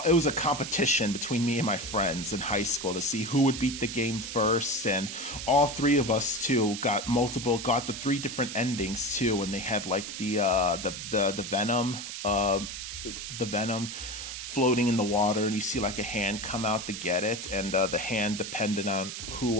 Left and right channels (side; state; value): right; noise; hiss, 7 dB below the sound